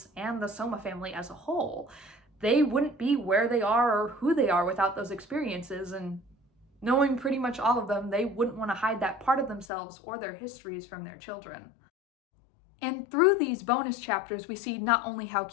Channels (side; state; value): right; drops out; at 9.7 s